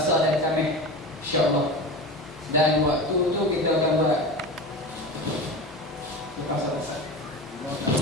dan Khamis, insyaAllah. Dan waktu tu kita akan buat pasal-pasal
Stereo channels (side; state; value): both; normal; correlation 0.28